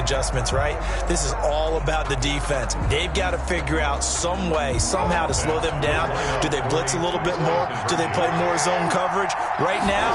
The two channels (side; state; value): both; identical; correlation 1.00